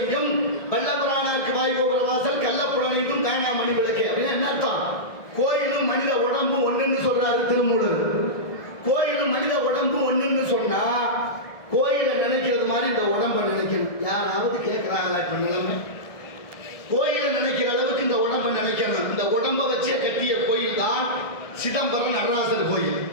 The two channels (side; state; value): right; late; 1.6 ms